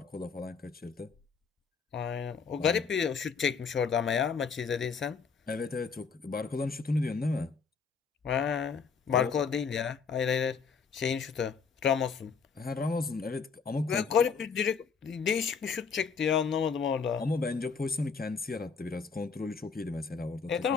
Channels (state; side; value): quieter; right; 5.7 dB